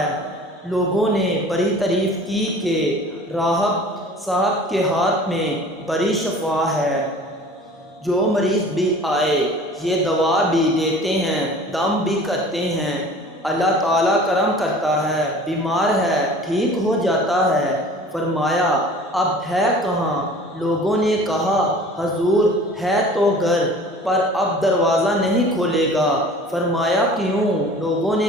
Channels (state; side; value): normal; both; correlation 0.45